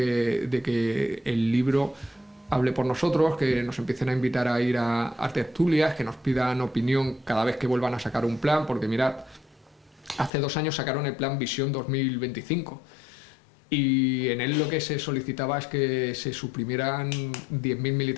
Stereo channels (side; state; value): right; drops out; at 10.3 s